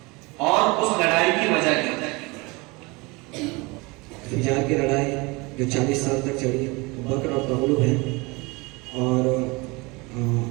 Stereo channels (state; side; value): quieter; left; 25.6 dB